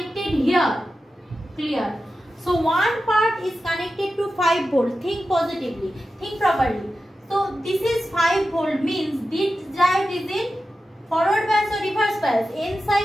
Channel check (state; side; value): normal; both; correlation 0.92